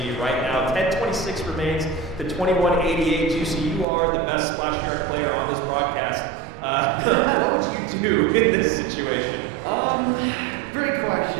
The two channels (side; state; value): left; drops out; at 3.9 s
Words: right now. 10:26 remains to 21:88. Juicy, you are the best Splash Yard player on this broadcast. What would you do in this situation? Great